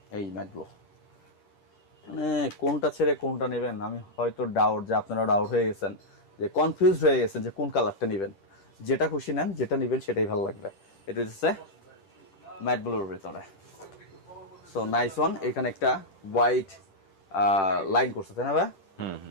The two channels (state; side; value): late; right; 10 ms